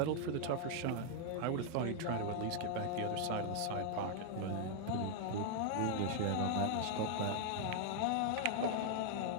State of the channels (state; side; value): different; both; correlation 0.00